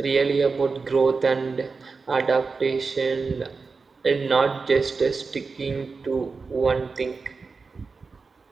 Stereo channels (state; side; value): quieter; left; 4.5 dB